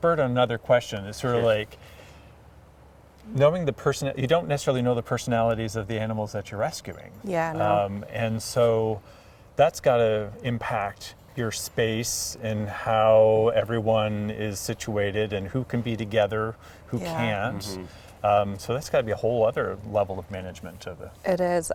on another question. It's sort of like knowing the person. You don't necessarily know the personalities of the animals that you're rescuing. Yeah, no. And so that's got to impact your space and how everyone is situated and who can be together, who can't. So that's got to be a whole other level of management of it. It is.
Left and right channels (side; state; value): both; identical; correlation 1.00